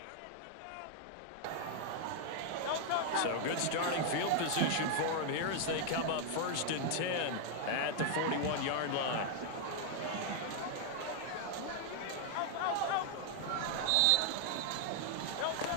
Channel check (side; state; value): both; different; correlation 0.00